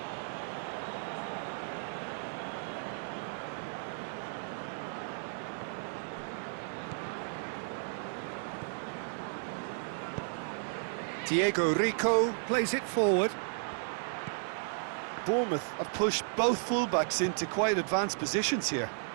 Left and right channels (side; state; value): left; silent; 55 dB below the other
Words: Diego Rico plays it forward. Bournemouth have pushed both fullbacks into quite advanced positions here.